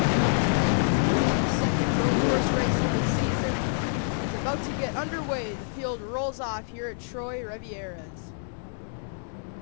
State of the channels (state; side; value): silent; right; 59 dB below the other